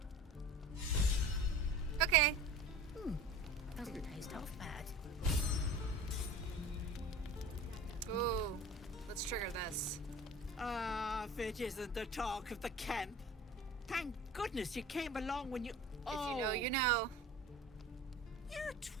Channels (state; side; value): normal; both; correlation 0.38